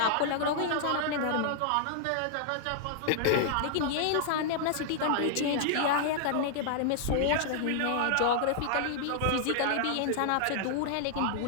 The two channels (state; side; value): different; both; correlation -0.01